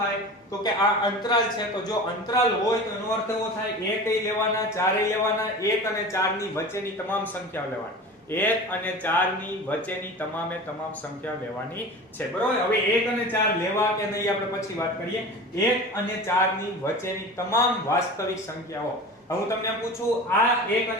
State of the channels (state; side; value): normal; both; correlation 0.35